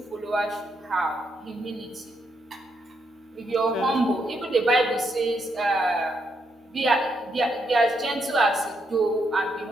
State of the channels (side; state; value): both; normal; correlation 0.78